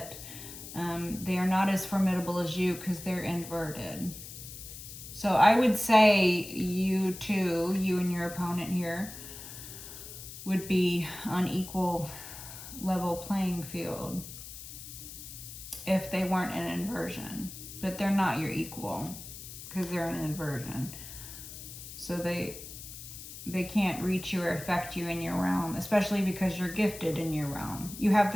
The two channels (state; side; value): noise; left; hiss, 12 dB below the sound